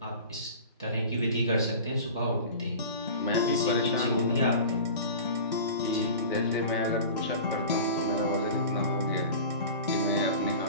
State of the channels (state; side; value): inverted; both; correlation -0.37